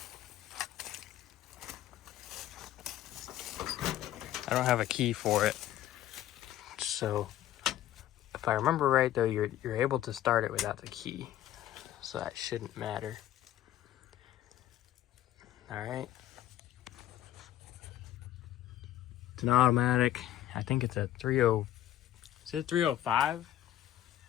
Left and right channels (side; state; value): right; quieter; 12.9 dB